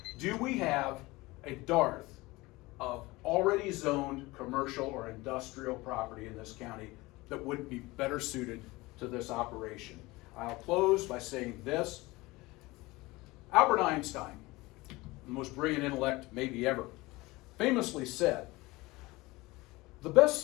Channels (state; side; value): quieter; right; 21.3 dB